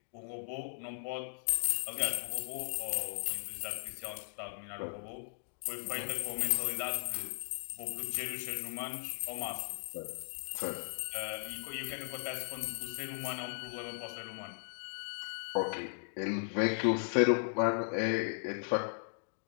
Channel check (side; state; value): right; silent; digital silence